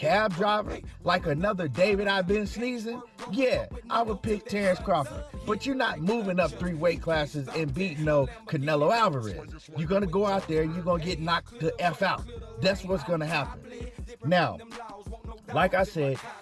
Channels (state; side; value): identical; both; correlation 1.00